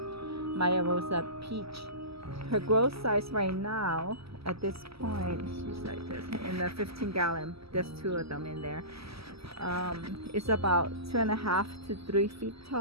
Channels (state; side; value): late; left; 0.76 ms